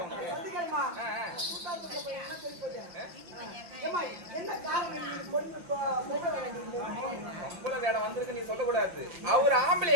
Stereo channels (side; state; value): left; late; 5.7 ms